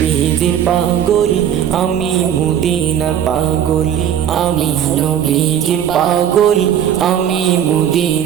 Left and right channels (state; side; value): quieter; left; 9.6 dB